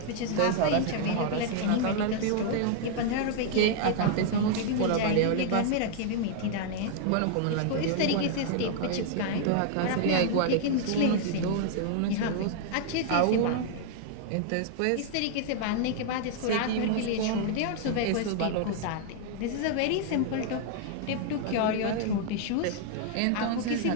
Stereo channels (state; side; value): different; both; correlation 0.00